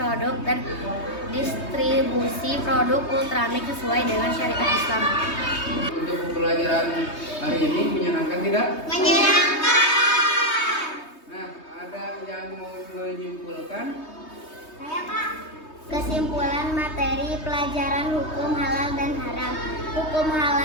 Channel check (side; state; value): right; late; 3.2 ms